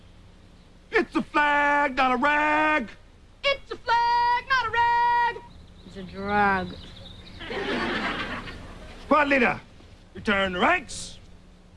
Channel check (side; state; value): both; identical; correlation 1.00